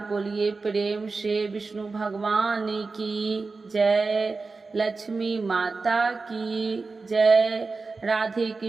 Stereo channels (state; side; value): quieter; left; 4.0 dB